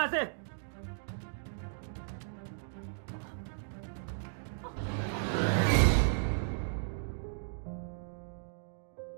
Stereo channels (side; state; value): left; silent; digital silence